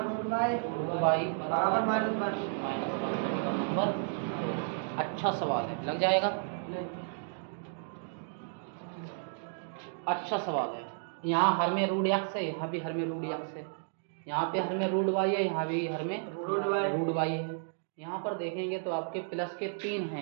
√y बराबर -1। -1। समीकरण नंबर 2। अच्छा सवाल है, लग जाएगा। अच्छा सवाल है। यहाँ हर में √x है, यहाँ भी हर में √x है, यहाँ पे हर में √y है, यहाँ भी हर में √y है। यहाँ पर देखेंगे तो आपके प्लस के 3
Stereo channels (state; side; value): silent; left; digital silence